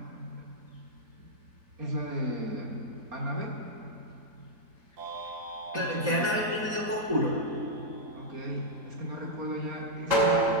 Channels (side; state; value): left; late; 4.1 ms